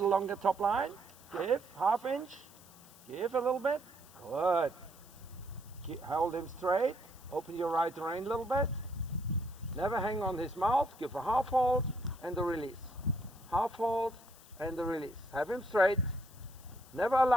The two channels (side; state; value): left; noise; hiss, 22 dB below the sound